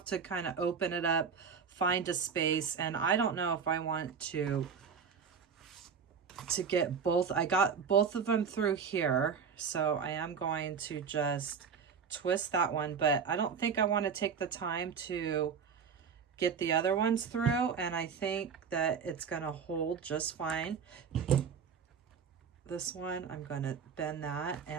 to kind of open it up, find a space, and I don't know if I want to get both. I got both of them through here, so I am going to just twist that one, but I don't think I want to take the time to get the other ones through, and I think that it's going to hold just fine. This one, I'm going to bend that,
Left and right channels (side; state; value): left; quieter; 6.4 dB